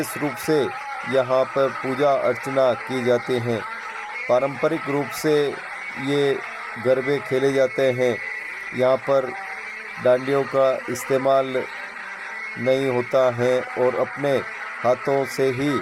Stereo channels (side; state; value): both; identical; correlation 1.00